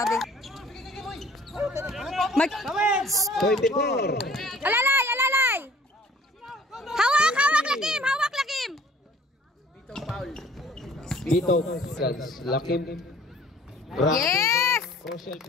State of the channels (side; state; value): both; normal; correlation 0.53